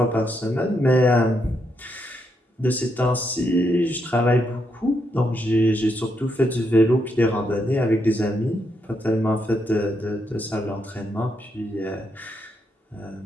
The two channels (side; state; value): both; normal; correlation 0.79